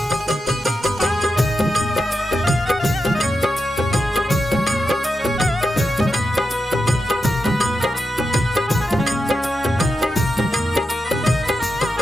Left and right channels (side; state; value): both; normal; correlation 0.88